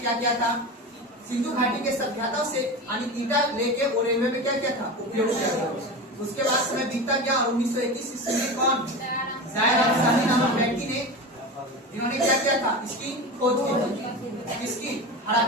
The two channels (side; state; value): both; normal; correlation 0.26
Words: किया था, सिंधु घाटी के सभ्यता से ईटा लेके वो रेलवे में क्या किया था, उपयोग किया था। उसके बाद समय बीतता गया और 1921 ईस्वी में कौन जायर अफसानी नामक व्यक्ति ने इन्होंने क्या किया था, इसकी खोज की। इसकी